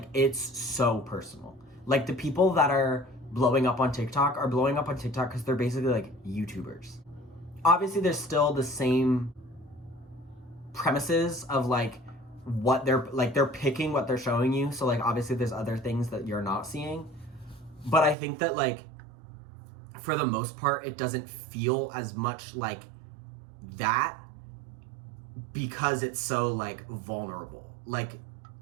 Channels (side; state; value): left; drops out; at 18.2 s